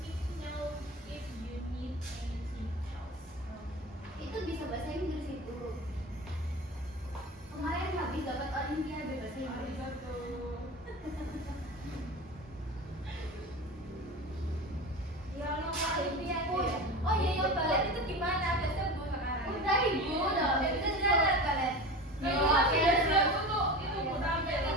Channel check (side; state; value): both; normal; correlation 0.30